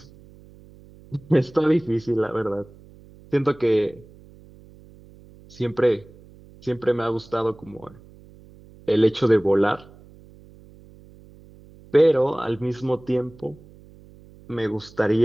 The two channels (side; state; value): right; noise; hum, 23 dB below the sound